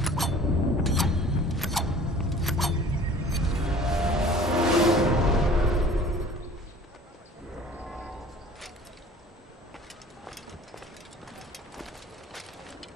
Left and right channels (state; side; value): normal; both; correlation 0.47